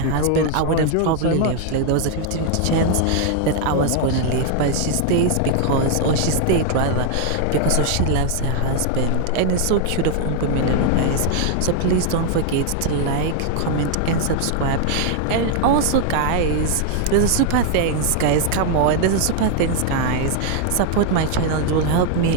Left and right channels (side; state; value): both; different; correlation 0.00